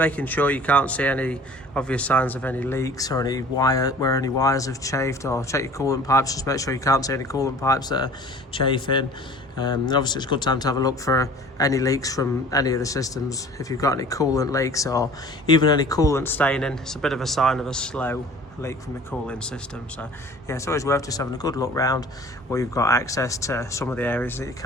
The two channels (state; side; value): normal; both; correlation 0.46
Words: sure you can't see any obvious signs of any leaks or any where any wires have chafed, or check your coolant pipes, just make sure you can't see any coolant pipes that are chafing. And obviously it's a good time to have a look for any leaks from any of the systems. If you've got any coolant leaks or even any coolant staining, it's a bit of a sign of a slow leak from the cooling system. So yeah, it's always worth just having a good look round where you've got access to some of the areas that you